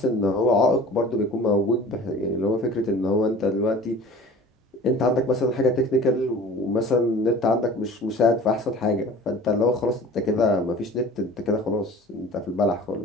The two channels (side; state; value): both; normal; correlation 0.42